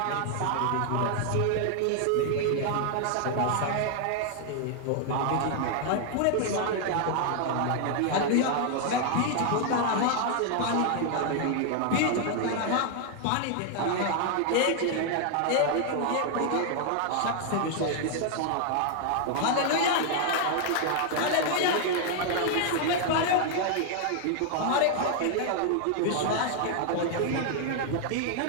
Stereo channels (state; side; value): different; both; correlation 0.00